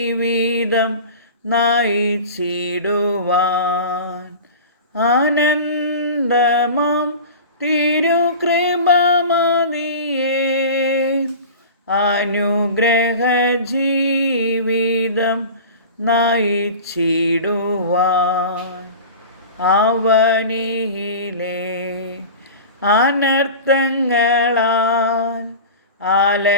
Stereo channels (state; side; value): inverted; both; correlation -0.35